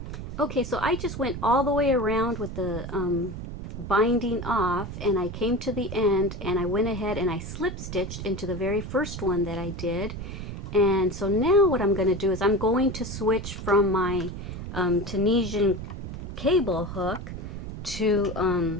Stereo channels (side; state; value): right; noise; rumble, 8 dB below the sound